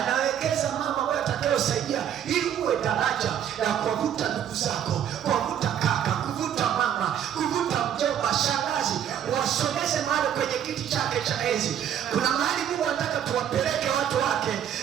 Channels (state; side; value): quieter; left; 9.6 dB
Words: mambo ambayo yatakayosaidia ili uwe daraja la kuvuta ndugu zako, kuvuta kaka, kuvuta mama, kuvuta mjomba, shangazi, wasogeze mahali kwenye kiti chake cha enzi. Kuna mahali Mungu anataka tuwapeleke watu wake.